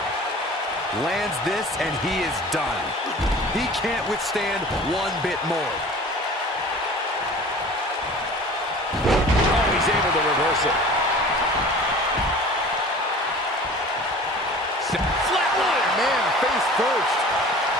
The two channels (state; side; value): normal; both; correlation 0.42